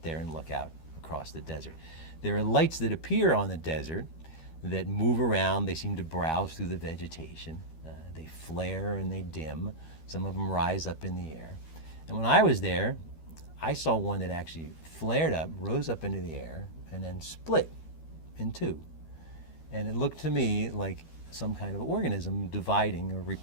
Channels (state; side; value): late; right; 12 ms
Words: there and look out across the desert. There are lights that appear on the desert that move around. They seem to browse through the vegetation. They flare and they dim. Some of them rise up in the air. And when I was there, I saw one that actually flared up, rose up into the air, and then split in two. And it looked to me like some kind of organism dividing or